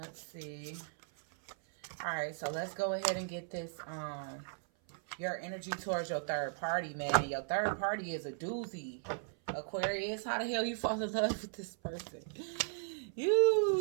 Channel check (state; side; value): silent; left; 53 dB below the other